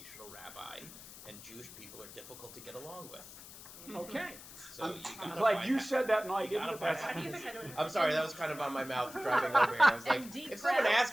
rabbi, and Jewish people are difficult to get along with. Okay. So I'm glad you said that and I didn't. I'm sorry, that was kind of on my mouth driving over here. I was like, if someone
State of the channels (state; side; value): noise; left; hiss, 16 dB below the sound